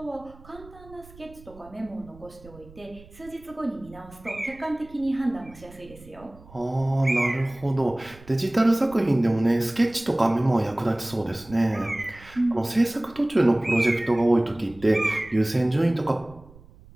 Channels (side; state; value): right; noise; rumble, 22 dB below the sound